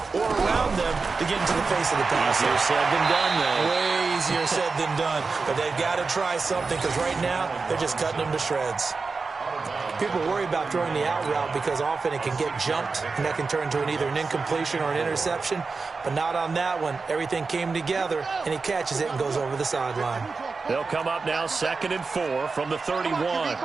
or around them to get into the face of the pass. Easier said than done, though. Way easier said than done. But they've got to try something, because right now they're just cutting them to shreds. People worry about throwing the out route because often it can get jumped, and that can turn into either an incompletion or an interception. But not on that one. Everything came together, and he catches it and goes over the sideline. They'll come up now 2nd and 4 from the 31.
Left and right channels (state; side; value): quieter; left; 4.4 dB